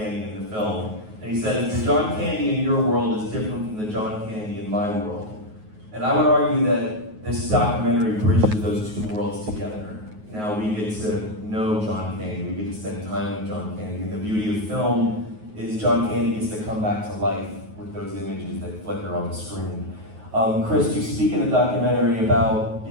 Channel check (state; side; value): late; left; 9.4 ms